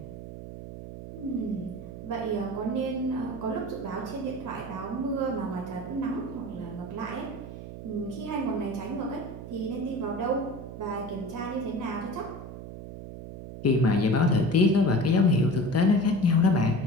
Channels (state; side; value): noise; right; hum, 11 dB below the sound